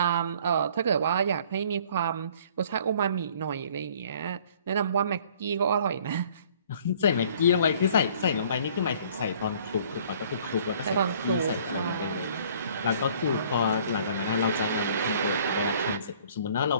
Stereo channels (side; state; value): both; inverted; correlation -0.55